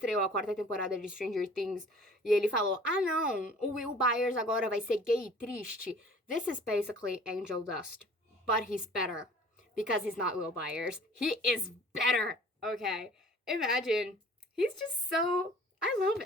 a 4ª temporada de Stranger Things e ele falou, ah não, o Will Byers agora vai ser gay e triste? This is basically Angel Dust, but he's better. Because he's not Will Byers. He is better. Okay. Imagine. He's just so... I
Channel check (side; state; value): both; normal; correlation 0.49